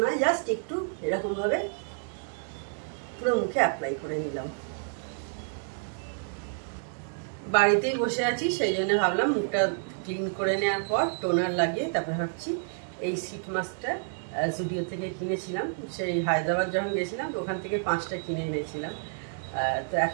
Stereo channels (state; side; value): silent; left; digital silence